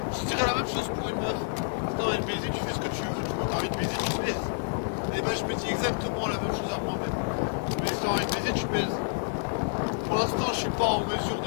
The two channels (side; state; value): right; silent; digital silence